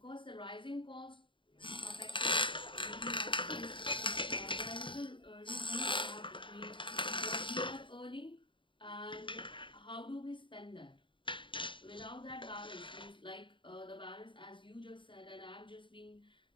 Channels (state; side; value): late; right; 0.24 ms